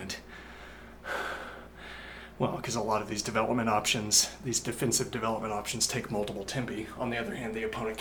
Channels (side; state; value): both; identical; correlation 1.00